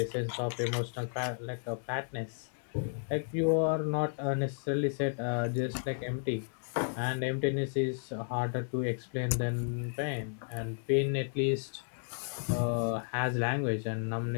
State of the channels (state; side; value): silent; right; digital silence